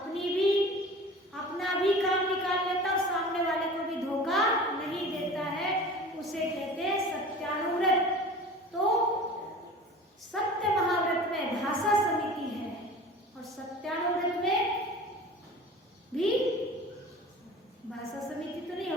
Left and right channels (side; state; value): both; normal; correlation 0.39